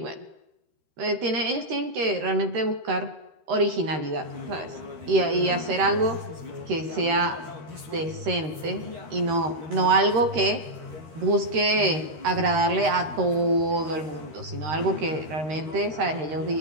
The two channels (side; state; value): left; late; 13 ms